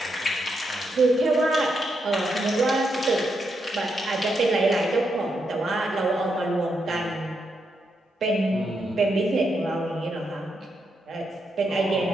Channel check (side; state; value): both; normal; correlation 0.82